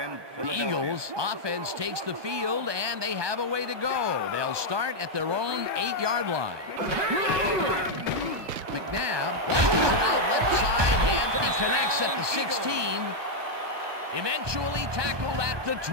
The Eagles offense takes the field, and they have a way to go. They'll start at their own 8-yard line. McNabb launches it out left side, and he connects at the 16. Eventually tackled at the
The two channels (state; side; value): late; left; 1.2 ms